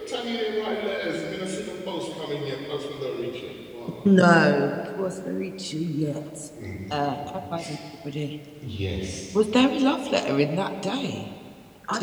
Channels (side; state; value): both; identical; correlation 1.00